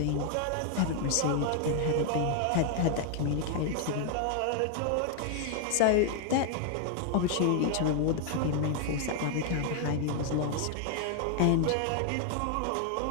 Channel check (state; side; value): different; both; correlation 0.00